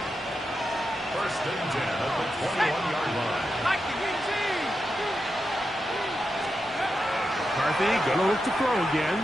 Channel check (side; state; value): both; normal; correlation 0.88